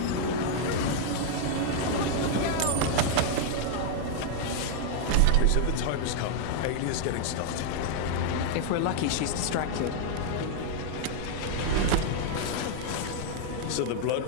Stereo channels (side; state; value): both; different; correlation -0.01